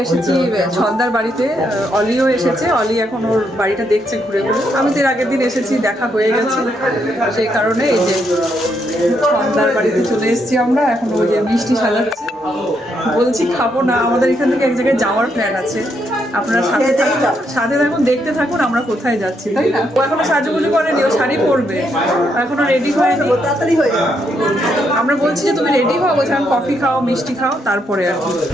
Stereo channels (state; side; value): normal; both; correlation 0.77